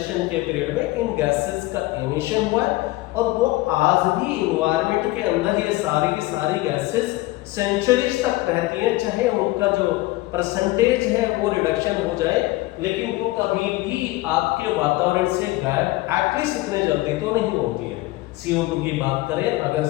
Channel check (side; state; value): right; quieter; 19.3 dB